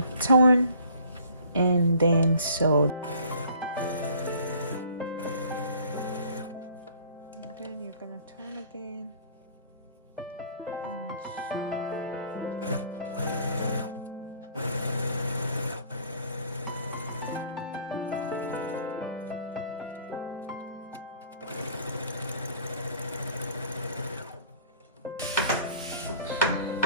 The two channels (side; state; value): both; inverted; correlation -0.54